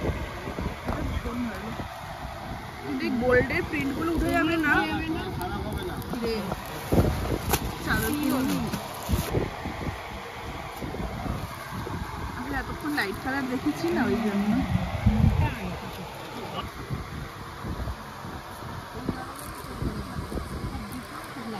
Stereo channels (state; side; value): identical; both; correlation 1.00